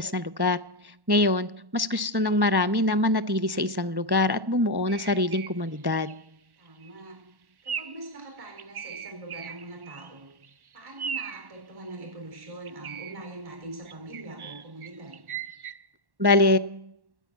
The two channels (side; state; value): left; late; 1.1 ms